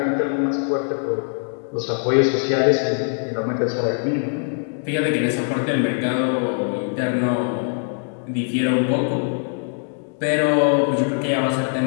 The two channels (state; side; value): silent; right; 64 dB below the other